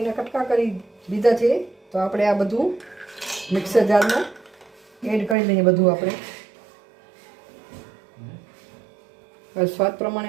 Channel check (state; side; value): drops out; left; at 5.4 s